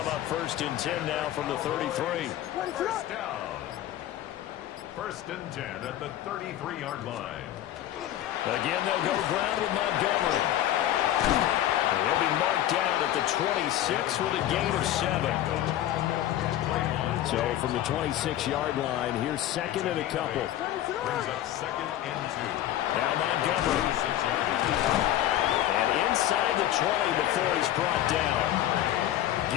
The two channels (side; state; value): right; quieter; 12.8 dB